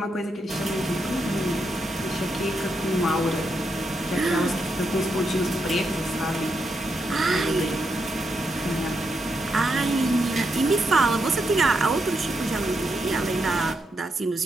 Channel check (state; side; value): normal; both; correlation 0.82